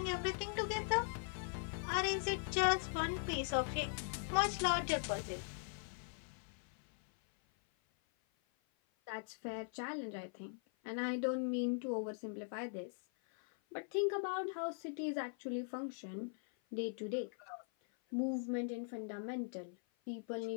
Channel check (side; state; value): right; silent; 51 dB below the other